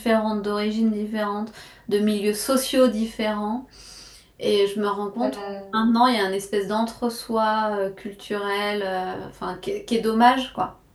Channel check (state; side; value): identical; both; correlation 1.00